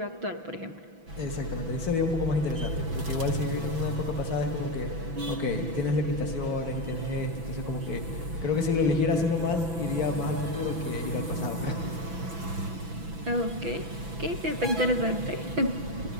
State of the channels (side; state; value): left; late; 6.0 ms